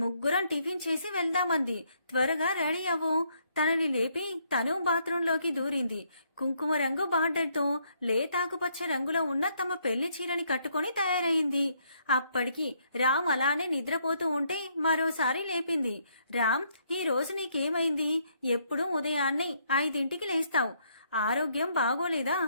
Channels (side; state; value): both; inverted; correlation -0.71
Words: ముగ్గురం టిఫిన్ చేసి వెళ్దామంది. త్వరగా రెడీ అవ్వు. తనని లేపి తను బాత్రూంలోకి దూరింది. కుంకుమ రంగు బార్డర్తో లేతాకుపచ్చ రంగులో ఉన్న తమ పెళ్లి చీరని కట్టుకుని తయారైంది. అప్పటికి రామ్ అలానే నిద్రపోతూ ఉంటే మరోసారి లేపింది. రామ్, ఈ రోజు నీకేమైంది? ఎప్పుడూ ఉదయాన్నే 5ంటికి లేస్తావు. ఆరోగ్యం బాగోలేదా?